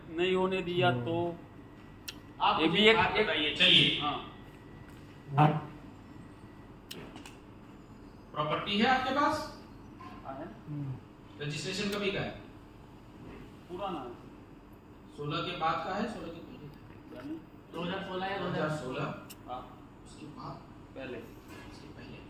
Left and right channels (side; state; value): both; identical; correlation 1.00